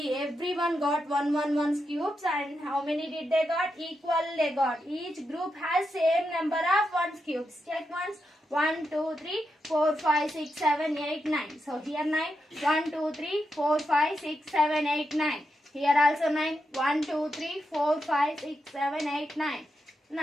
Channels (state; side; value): normal; both; correlation 0.85